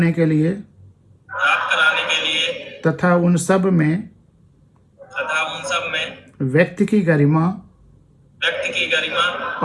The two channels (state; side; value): identical; both; correlation 1.00